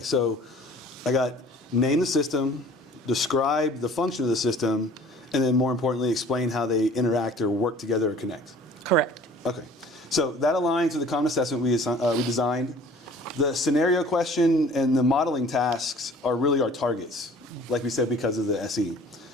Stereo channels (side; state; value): both; normal; correlation 0.49